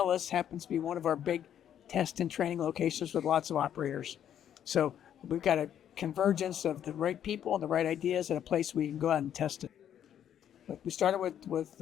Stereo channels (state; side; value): quieter; right; 9.9 dB